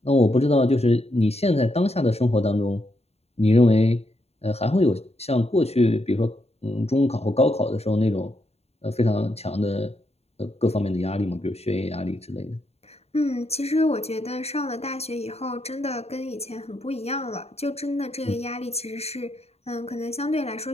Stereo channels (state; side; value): late; right; 0.30 ms